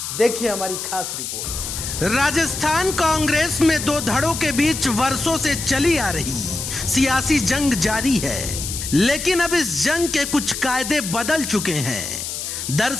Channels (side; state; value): left; noise; hiss, 5 dB below the sound